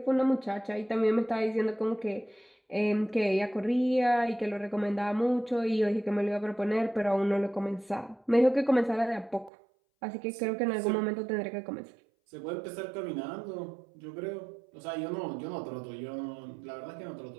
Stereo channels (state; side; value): drops out; left; at 9.5 s